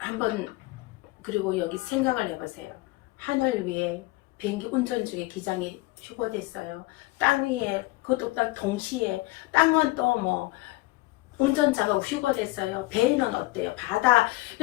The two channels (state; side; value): quieter; right; 20.4 dB